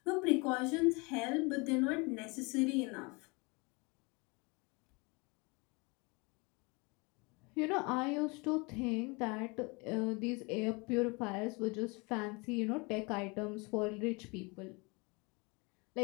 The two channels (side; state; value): right; quieter; 28.4 dB